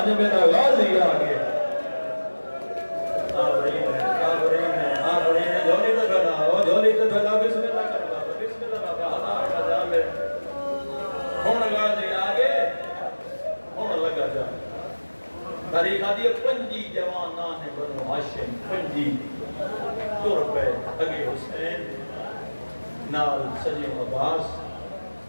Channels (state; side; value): inverted; both; correlation -1.00